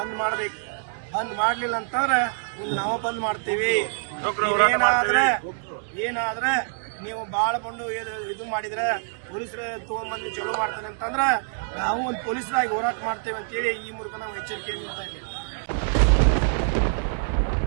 ಮಾಡ್ಬೇಕು. ಬಂದ್ ಮಾಡ್ಲಿಲ್ಲ ಅಂತಂದ್ರೆ ನಾವು ಬಂದ್ ಮಾಡ್ತೇವೆ. ಏನಾದ್ರೆ ನೀವು ಬಾಳ ಬಂದು ಇದು ಮಾಡಿದ್ರೆ ಪೊಲೀಸರು ತಗೊಂಡ್ಬಂದು ಚಲೋ ಮಾಡ್ತಾನೆ ಅಂತಂದ್ರೆ ನಾವು ಒಂದು ಪೊಲೀಸರಾಗಿ ಹೋರಾಟ ಮಾಡ್ತೇವೆ ಅಂತೇಳಿ ಈ ಮೂಲಕ ನಾವು ಎಚ್ಚರಿಕೆ ನೀಡ್ತಾ ಇದ್ದೇವೆ.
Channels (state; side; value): silent; left; 61 dB below the other